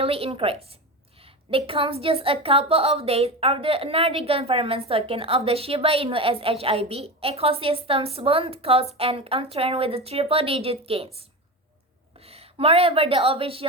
increase. It comes just a couple of days after another government token of the Shiba Inu SHIB ecosystem's bond cost and uptrend with the triple-digit gains. Moreover, the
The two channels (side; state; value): both; normal; correlation 0.23